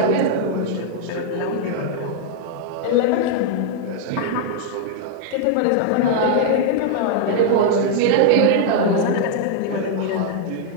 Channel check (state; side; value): different; both; correlation -0.01